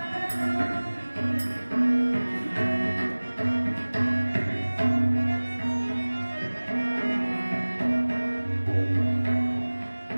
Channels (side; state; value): both; inverted; correlation -1.00